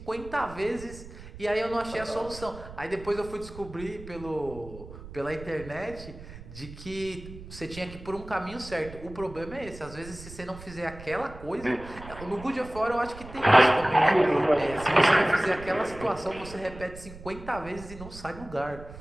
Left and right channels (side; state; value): right; noise; rumble, 15 dB below the sound